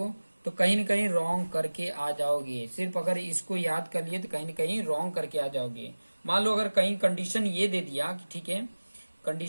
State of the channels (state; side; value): inverted; both; correlation -1.00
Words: तो कहीं न कहीं रॉन्ग करके आ जाओगे। सिर्फ अगर इसको याद कर लिए तो कहीं न कहीं रॉन्ग करके आ जाओगे। मान लो अगर कहीं कंडीशन ये दे दिया, ठीक है,